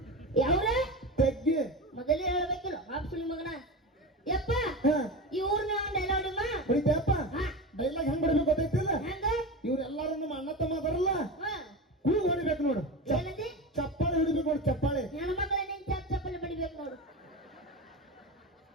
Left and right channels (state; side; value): normal; both; correlation 0.25